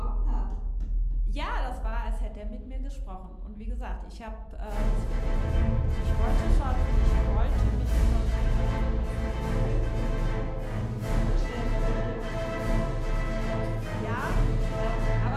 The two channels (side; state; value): both; identical; correlation 1.00